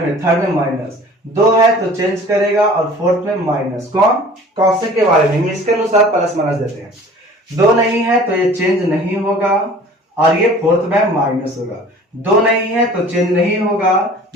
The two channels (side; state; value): both; normal; correlation 0.46